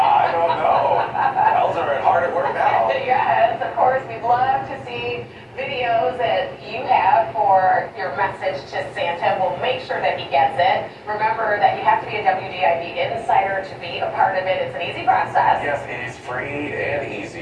Yes, it is free and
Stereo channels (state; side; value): identical; both; correlation 1.00